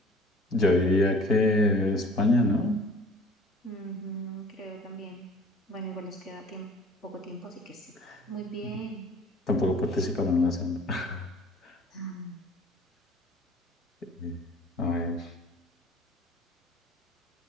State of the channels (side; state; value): both; normal; correlation 0.49